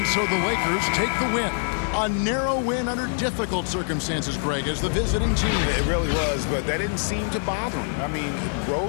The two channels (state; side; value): silent; right; 62 dB below the other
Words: so the Lakers take the win. A narrow win under difficult circumstances, Greg, as the visiting team. It really was, but that didn't seem to bother them. I mean,